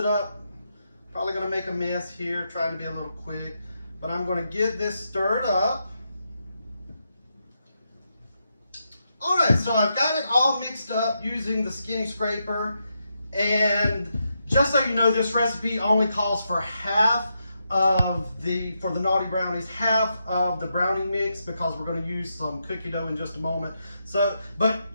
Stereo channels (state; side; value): inverted; both; correlation -0.83